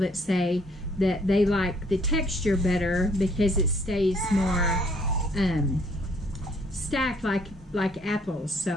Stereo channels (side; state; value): both; normal; correlation 0.64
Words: say that they like the texture better because it stays more stacked like apples.